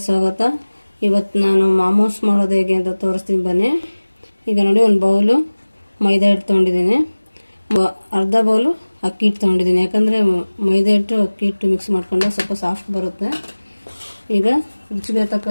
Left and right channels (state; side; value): inverted; both; correlation -1.00